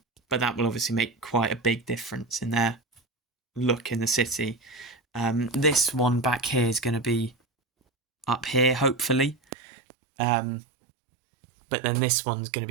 that will obviously make quite a big difference in their look in the city. This one back here is going to be up here, hopefully. But then this one's going to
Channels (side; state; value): left; drops out; at 9.3 s